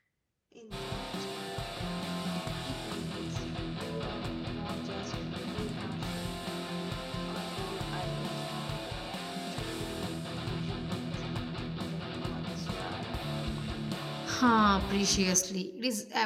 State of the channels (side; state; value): both; identical; correlation 1.00